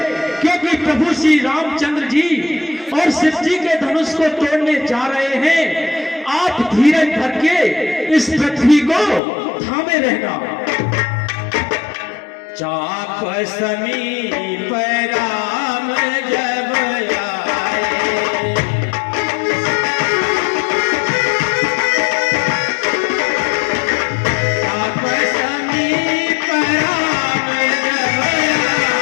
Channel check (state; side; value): drops out; right; at 9.2 s